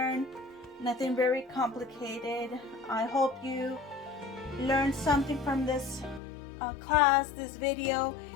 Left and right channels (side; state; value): right; drops out; at 6.2 s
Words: nothing very complicated. I hope you learned something from this class, this video,